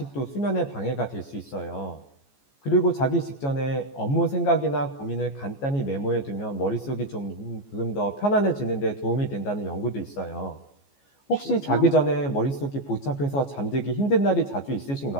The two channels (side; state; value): right; late; 14 ms